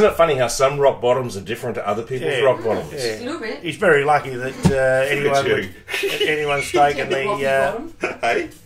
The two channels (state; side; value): identical; both; correlation 1.00